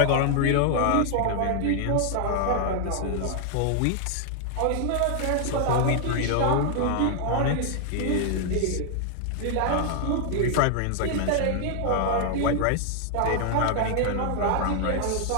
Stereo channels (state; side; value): different; both; correlation 0.00